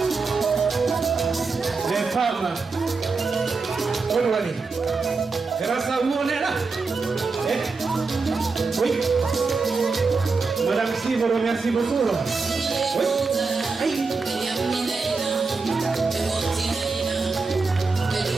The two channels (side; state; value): left; quieter; 4.3 dB